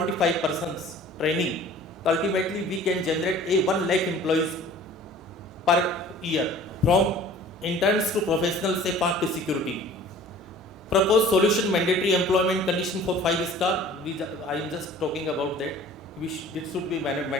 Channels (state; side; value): normal; both; correlation 0.47